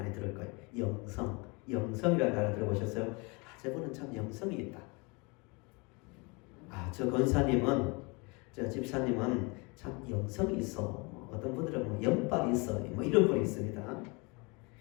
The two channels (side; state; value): right; quieter; 29.0 dB